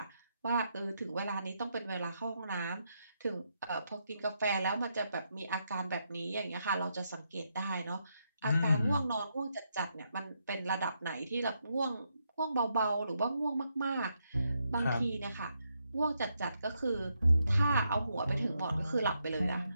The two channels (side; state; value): both; inverted; correlation -0.80